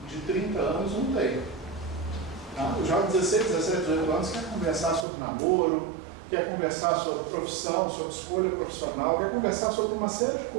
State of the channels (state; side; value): drops out; left; at 5.1 s